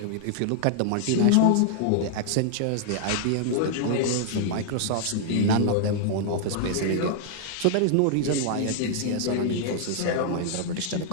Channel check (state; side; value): different; both; correlation 0.00